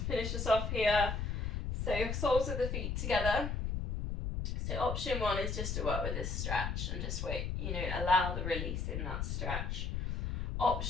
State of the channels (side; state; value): left; noise; rumble, 2 dB below the sound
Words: finish us off here. So soles of the feet together. So option 1 is just to work with this stretch and just wait, allow the release in that stretch.